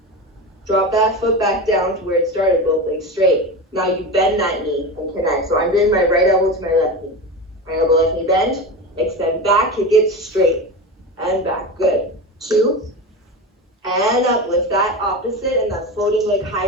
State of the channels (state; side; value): normal; both; correlation 0.24